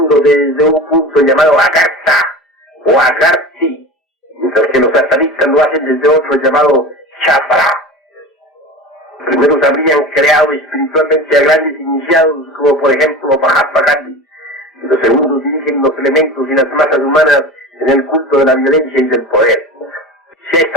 desde un punto llamado Agartha o Agarthi, mientras que los satanistas lo hacen desde otro llamado Chapra. Los primeros habrían creado espiritualmente a grandes iniciados, como por ejemplo Mahatma Gandhi, y los segundos dirigen los elementos y las masas humanas en el culto de la violencia y del poder. Se ha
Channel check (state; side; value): normal; both; correlation 0.32